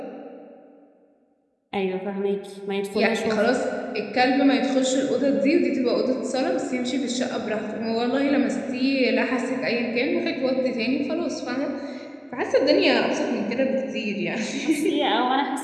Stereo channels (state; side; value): identical; both; correlation 1.00